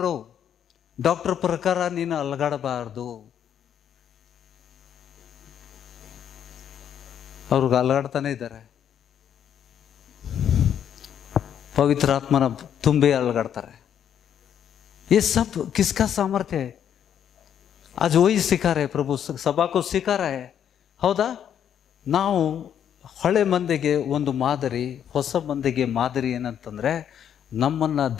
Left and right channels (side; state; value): right; quieter; 9.2 dB